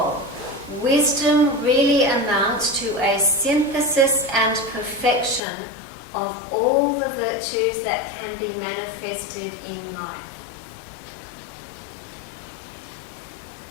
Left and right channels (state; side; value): drops out; right; at 5.4 s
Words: Wisdom really amounts to a synthesis and perfection of all the virtues that can be manifested in life.